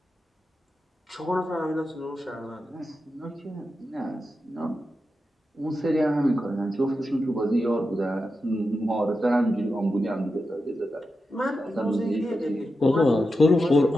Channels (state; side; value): normal; both; correlation 0.89